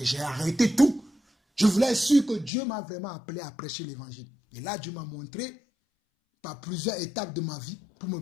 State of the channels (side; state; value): right; drops out; at 2.5 s